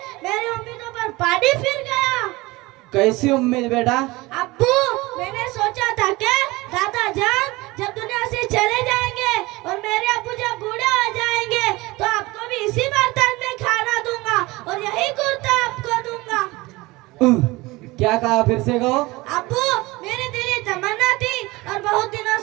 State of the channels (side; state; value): left; quieter; 21.6 dB